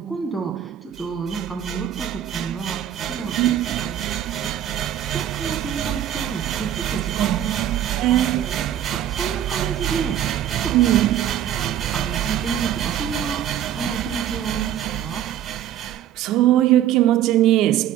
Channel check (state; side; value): quieter; left; 10.8 dB